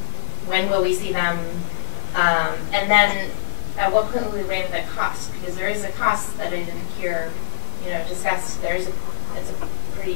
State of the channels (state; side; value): quieter; right; 31.6 dB